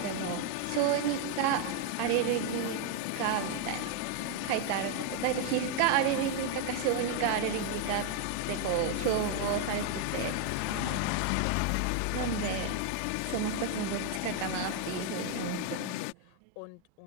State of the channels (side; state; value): both; different; correlation 0.01